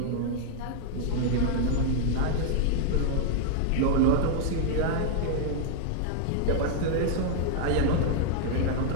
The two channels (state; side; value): different; both; correlation 0.00